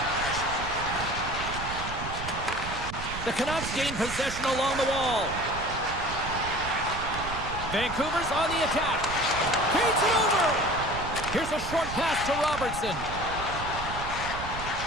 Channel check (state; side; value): noise; right; rumble, 8 dB below the sound